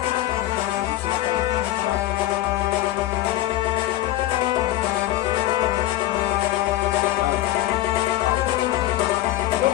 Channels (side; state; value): right; quieter; 15.0 dB